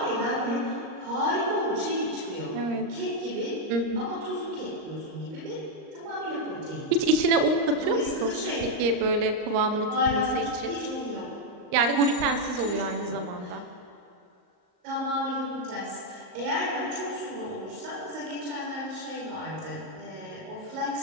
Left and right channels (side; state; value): left; late; 39 ms